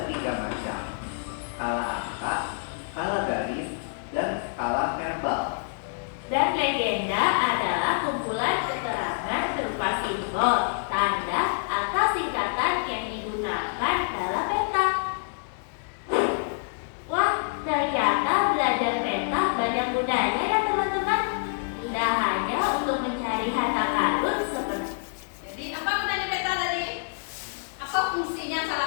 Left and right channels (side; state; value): right; silent; digital silence